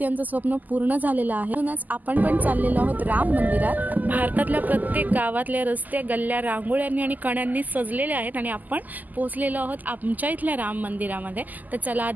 स्वप्न पूर्ण झालेलं आहे। म्हणूनच आपण पण चाललेलो आहोत राम मंदिरात। भारतातल्या प्रत्येक गावातले रस्ते, गल्ल्या रांगोळ्यांनी आणि कण्यांनी सजलेले आहेत आणि आपण पोहोचलेलो आहोत आमच्या इथल्या राम मंदिरामध्ये। तर चला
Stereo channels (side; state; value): left; late; 0.082 ms